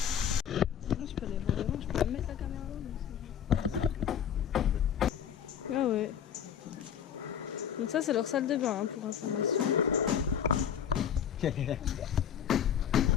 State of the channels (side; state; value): right; quieter; 8.7 dB